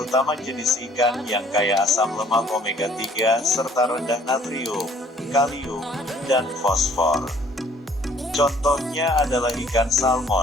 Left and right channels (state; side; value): normal; both; correlation 0.58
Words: jenis ikan yang kaya asam lemak omega 3 serta rendah natrium, kalium, dan fosfor. Contohnya adalah ikan